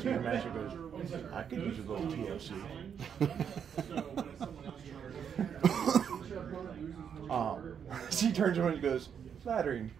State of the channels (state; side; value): quieter; left; 7.8 dB